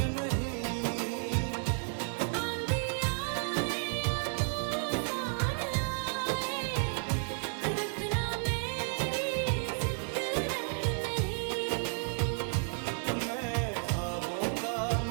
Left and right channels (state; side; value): silent; left; 56 dB below the other